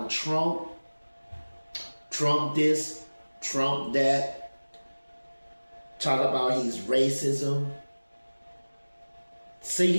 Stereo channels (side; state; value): both; inverted; correlation -1.00